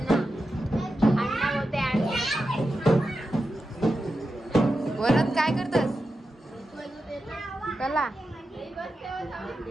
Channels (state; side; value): normal; both; correlation 0.90